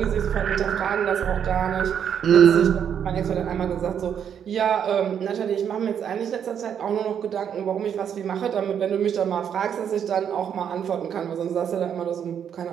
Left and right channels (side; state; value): left; quieter; 8.4 dB